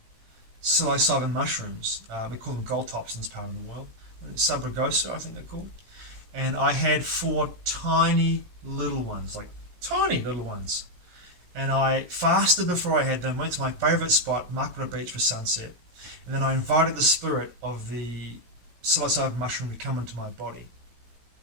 psilocybin mushrooms. We call them gold tops in this part of the world. Subragosa, I think they're called. And I had 4 tiny little ones, And I fasted before I had them, went to my favourite spot, Makara Beach, for sunset. And then I invited the spirit of the psilocybin mushroom to come into my body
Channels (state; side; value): late; left; 17 ms